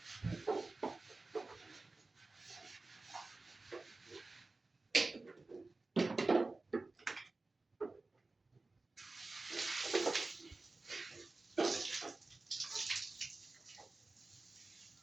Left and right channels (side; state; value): left; quieter; 3.4 dB